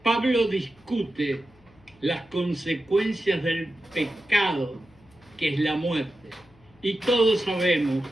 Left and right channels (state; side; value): noise; left; hum, 29 dB below the sound